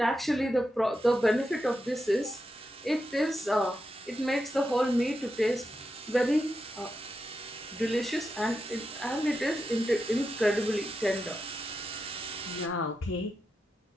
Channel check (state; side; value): normal; both; correlation 0.88